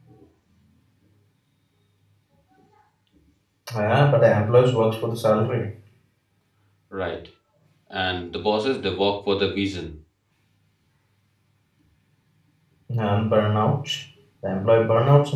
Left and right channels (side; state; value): both; identical; correlation 1.00